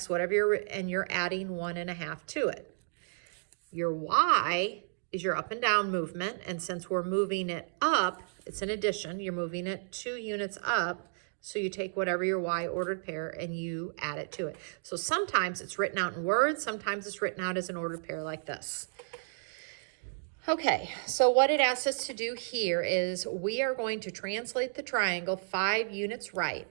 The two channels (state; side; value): silent; left; digital silence